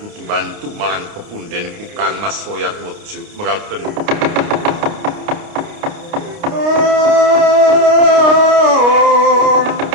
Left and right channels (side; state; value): left; late; 29 ms